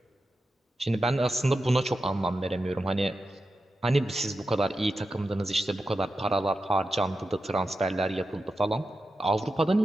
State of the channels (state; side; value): normal; both; correlation 0.91